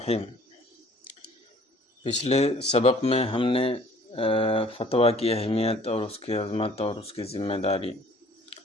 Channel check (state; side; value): normal; both; correlation 0.54